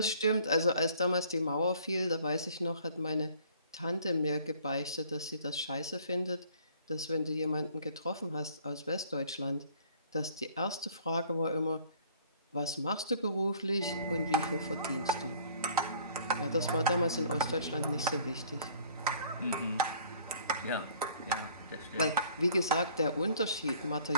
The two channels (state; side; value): inverted; both; correlation -0.55